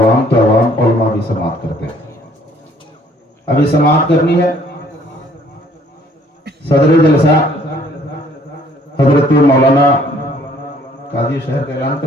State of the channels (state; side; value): normal; both; correlation 0.60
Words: तो अवाम उलमा भी समाअत करते हैं। अभी समाअत करनी है। सदर जलसा हजरत मौलाना काजी शहर का ऐलान